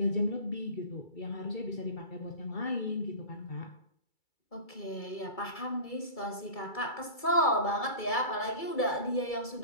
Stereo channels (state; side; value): late; right; 2.3 ms